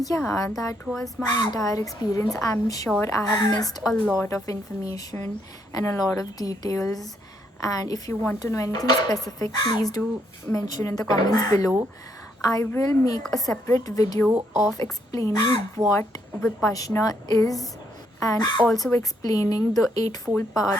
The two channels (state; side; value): normal; both; correlation 0.74